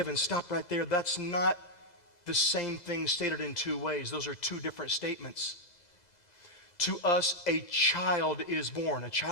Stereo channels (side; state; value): right; late; 2.0 ms